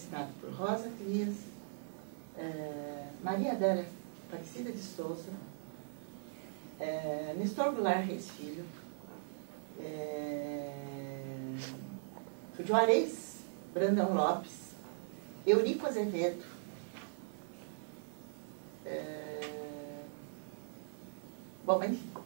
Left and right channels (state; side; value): silent; left; digital silence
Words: por Rosa Clias, Maria Adélia Aparecida de Souza, Nestor Goulart Reis Filho, Juarez Brandão Lopes, Eurico Azevedo, bom, enfim,